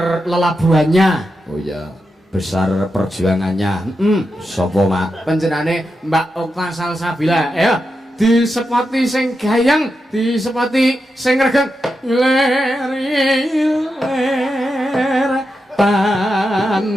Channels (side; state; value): both; normal; correlation 0.88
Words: lelabuhannya. Oh iya. Besar perjuangannya. Sopo, Mak? Panjenengane Mbak Okta Salsabila. Ayo disepati sing gayang, disepati sing regeng. Ler